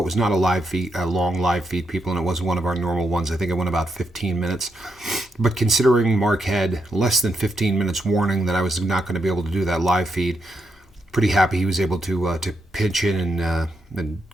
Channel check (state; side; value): normal; both; correlation 0.81